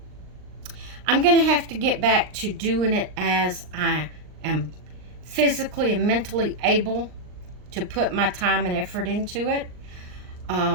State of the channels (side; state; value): left; late; 39 ms